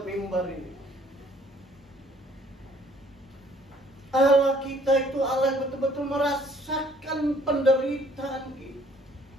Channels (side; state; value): both; normal; correlation 0.60